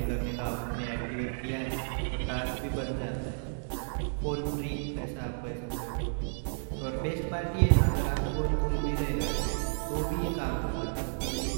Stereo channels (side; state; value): left; silent; digital silence